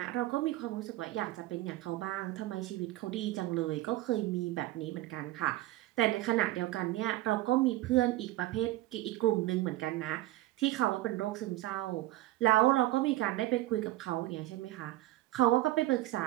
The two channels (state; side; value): quieter; left; 16.6 dB